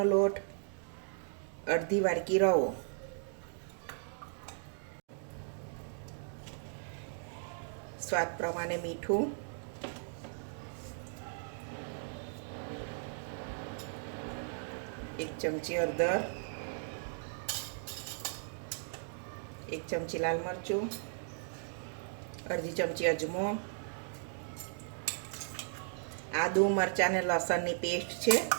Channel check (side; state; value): left; silent; digital silence